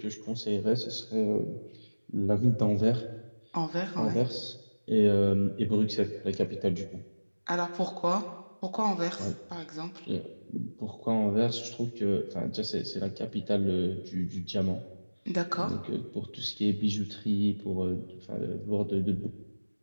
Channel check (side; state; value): both; inverted; correlation -1.00